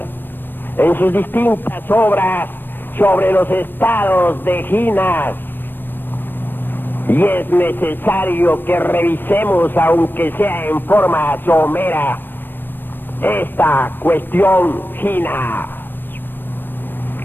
en sus distintas obras sobre los estados de ginas, y es necesario que revisemos, aunque sea en forma somera, esta cuestión gina.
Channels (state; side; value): late; right; 0.095 ms